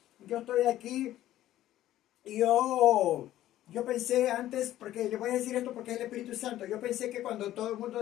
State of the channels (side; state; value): right; quieter; 13.7 dB